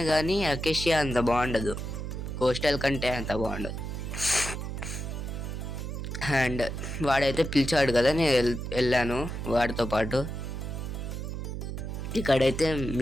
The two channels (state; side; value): noise; right; hum, 5 dB below the sound